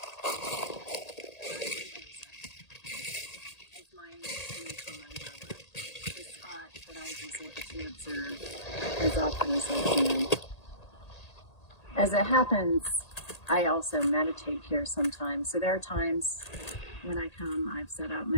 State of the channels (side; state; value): right; late; 1.8 ms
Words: of my nature mandala, the spot that I visit to observe as often as I can. As it happens, I also meditate here sometimes. So there are times when I come, I've set out